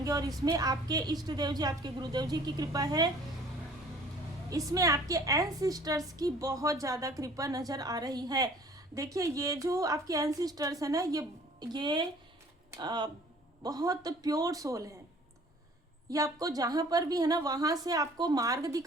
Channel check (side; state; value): both; normal; correlation 0.52